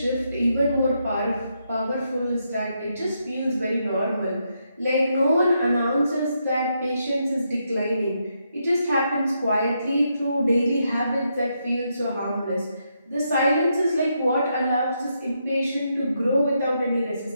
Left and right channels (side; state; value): both; inverted; correlation -0.80